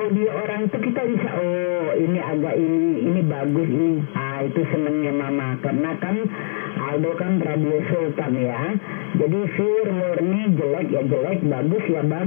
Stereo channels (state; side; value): silent; right; 62 dB below the other